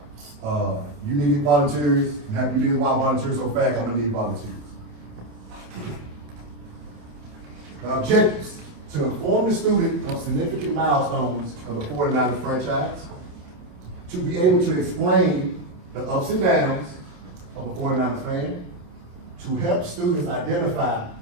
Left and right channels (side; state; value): left; late; 28 ms